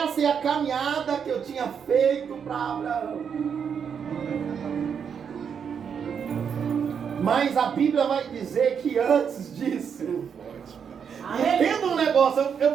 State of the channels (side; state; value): left; quieter; 7.1 dB